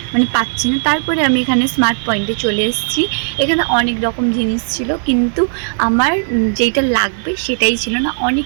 মানে পাচ্ছি না। তারপরে আমি এখানে স্মার্ট পয়েন্টে চলে এসেছি। এখানে অনেক রকম জিনিস ছিল, কিন্তু আমার যেটা লাগবে সেটাই ছিল না।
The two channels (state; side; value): silent; left; 68 dB below the other